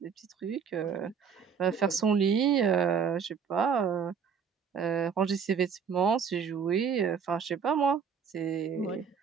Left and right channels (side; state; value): left; quieter; 6.6 dB